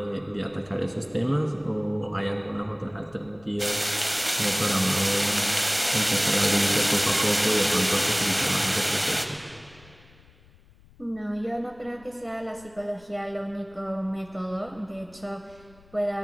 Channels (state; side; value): noise; left; rumble, 26 dB below the sound